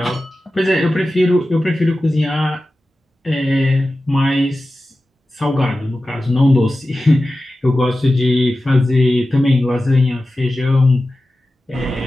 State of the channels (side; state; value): both; normal; correlation 0.94